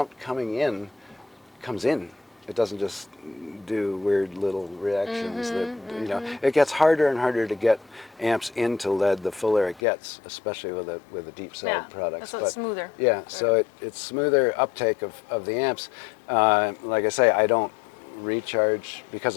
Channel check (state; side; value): drops out; right; at 9.8 s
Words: comes in. It doesn't just do weird little reactions It gets harder and harder to get amps into lead the fuller it gets, especially with a deep cell products. So it's smoother. Yeah, so it's smoother uptake of the amps. Like I say, I don't recharge